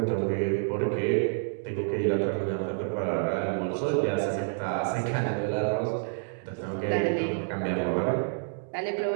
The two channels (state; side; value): silent; left; digital silence